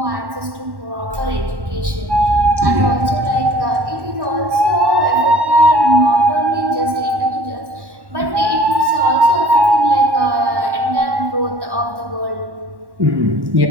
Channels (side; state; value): left; late; 1.1 ms